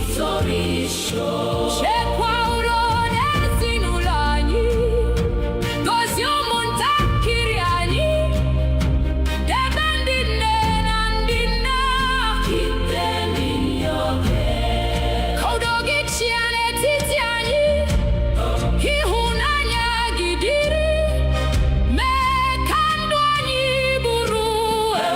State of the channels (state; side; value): identical; both; correlation 1.00